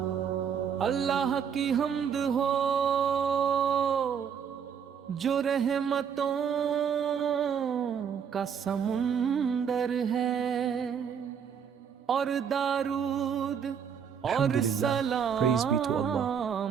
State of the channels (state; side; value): quieter; left; 7.4 dB